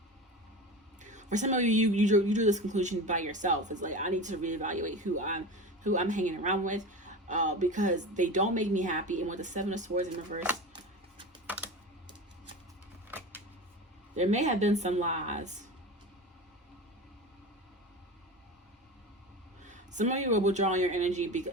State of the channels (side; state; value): both; normal; correlation 0.29